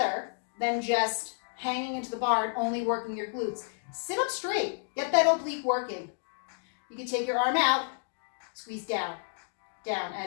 than just hanging into the bar and only working your glutes. Sit up straight. Get that oblique working. You can take your arm out, squeeze down. Down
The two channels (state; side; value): silent; right; digital silence